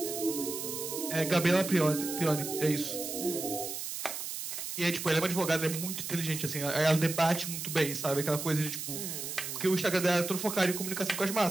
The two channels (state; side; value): noise; right; hiss, 6 dB below the sound